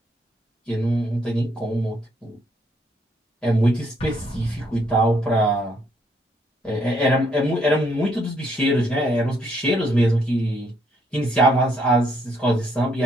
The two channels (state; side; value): normal; both; correlation 0.71